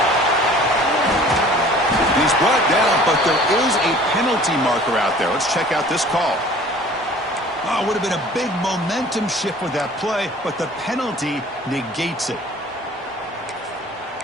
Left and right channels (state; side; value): normal; both; correlation 0.49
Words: He's brought down, but there is a penalty marker out there. Let's check out this call. Oh, would have been a big momentum shift with that play, but the penalty negates it.